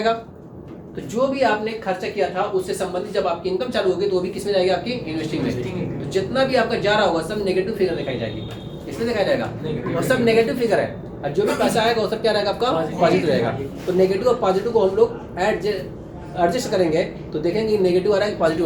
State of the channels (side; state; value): both; identical; correlation 1.00